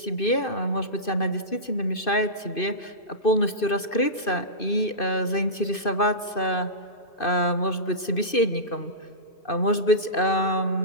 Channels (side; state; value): right; late; 2.5 ms